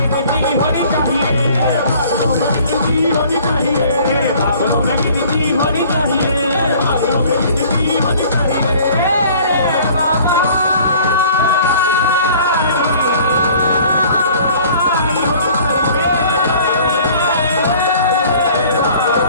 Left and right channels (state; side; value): inverted; both; correlation -0.52